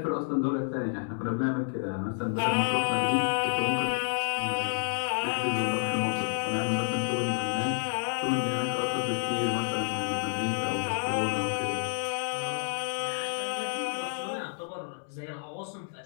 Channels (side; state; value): right; silent; digital silence